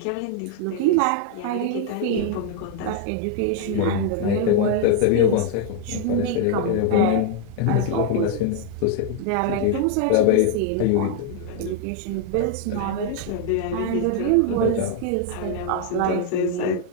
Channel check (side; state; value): both; different; correlation 0.00